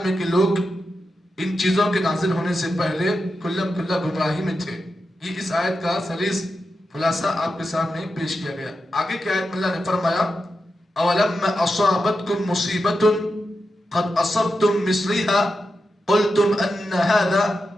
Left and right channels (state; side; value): normal; both; correlation 0.89